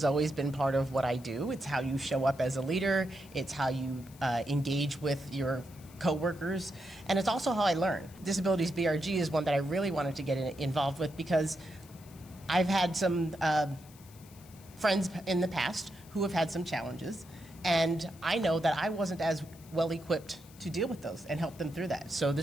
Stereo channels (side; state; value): left; noise; hiss, 23 dB below the sound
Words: always been part of what I do. It's how you show up as a leader. It's how you engage with your coworkers, and it's also how I learn. Disabilities BRG is one that I really wanted to get involved with because I've had some friends in the past who have had some challenges, and I know that I wasn't as well equipped to deal with those and help them through that. So